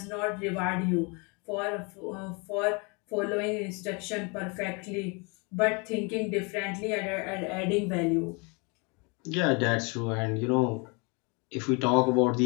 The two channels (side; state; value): right; quieter; 31.3 dB